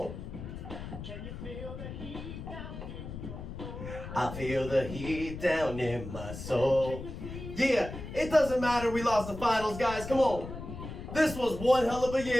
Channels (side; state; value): left; noise; rumble, 9 dB below the sound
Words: Can you feel the heat down in your soul? I feel the heat down in my soul. Yeah, it doesn't matter we lost the finals, guys, come on. This was one hell of a